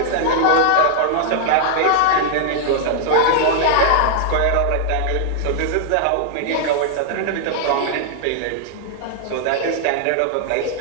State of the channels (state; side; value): different; both; correlation -0.01